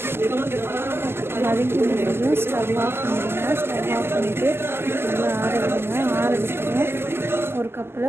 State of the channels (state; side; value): late; left; 0.12 ms